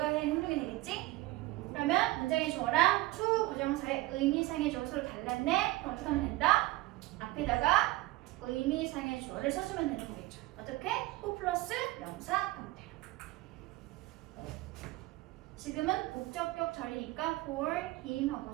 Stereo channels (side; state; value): left; quieter; 19.1 dB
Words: 해야 하는 행동이 되겠지? 그러면 문장의 주어랑 to 부정사의 의미상의 주어 서로 달랐네? 그럼 어떻게 하면 된다? 앞에다가 의미상의 주어를 써주면 되는 거겠죠. 어떻게? who 플러스 명사 형태로. 지금은 목적격 절이니까 for him 하고